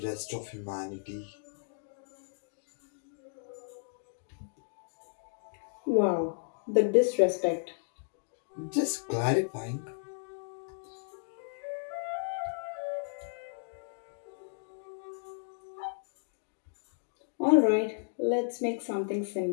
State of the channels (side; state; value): right; silent; digital silence